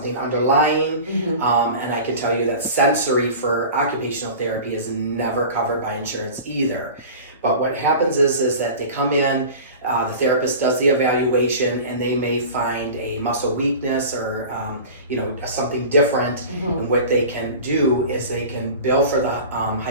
underlying, and I can tell you that sensory for occupational therapy is never covered by insurance either. But what happens is that they come in, the therapist does the evaluation, and they may find a muscle weakness or you know, something different. And what they can do is they can bill for the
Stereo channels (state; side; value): inverted; both; correlation -0.36